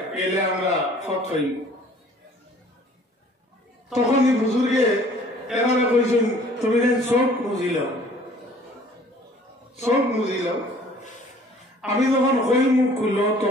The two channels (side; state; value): both; normal; correlation 0.54